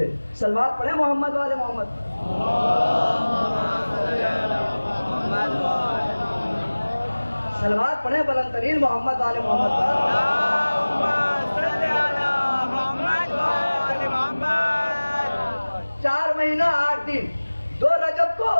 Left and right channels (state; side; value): inverted; both; correlation -1.00